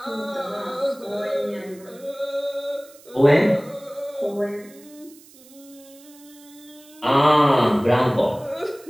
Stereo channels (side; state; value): right; noise; hiss, 24 dB below the sound